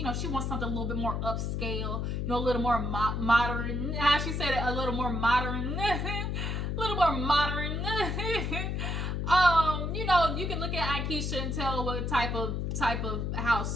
know, she wants something a little bit more upscale, you know, a little more modern. How she said it, a little more modern. A little more modern. You know, you can look at Aikisha and tell what type of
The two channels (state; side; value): noise; left; hum, 1 dB below the sound